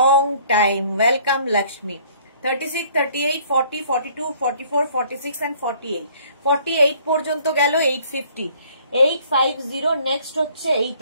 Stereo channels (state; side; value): inverted; both; correlation -0.58